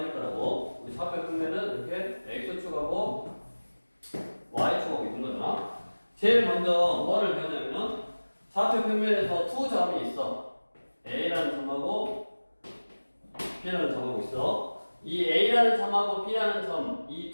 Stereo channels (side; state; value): both; inverted; correlation -1.00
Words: 거라고. 우리 좌표 평면은 이렇게 x축하고 y축하고 있는 거잖아. 제일 먼저 뭐를 배우냐면 좌표 평면에서 두 점이 있어. A라는 점하고 B라는 점하고 있어. 이 A라는 점하고 B라는 점, 이